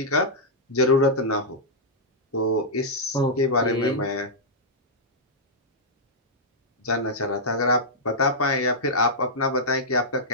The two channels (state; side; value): normal; both; correlation -0.09